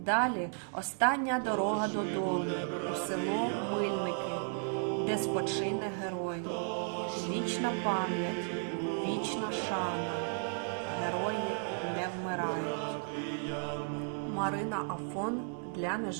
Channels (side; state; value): left; silent; 55 dB below the other